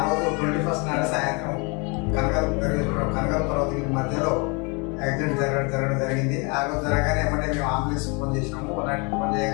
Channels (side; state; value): right; quieter; 31.0 dB